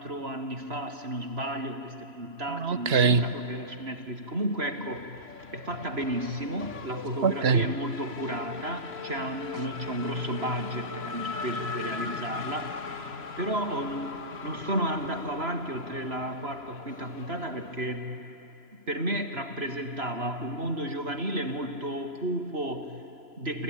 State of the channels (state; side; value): late; left; 3.0 ms